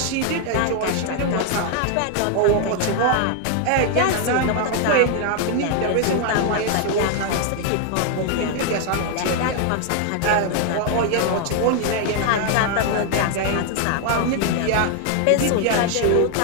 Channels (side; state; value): both; different; correlation 0.00